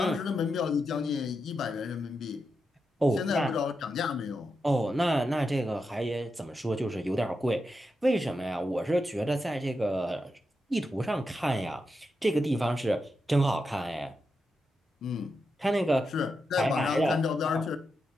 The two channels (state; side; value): normal; both; correlation 0.87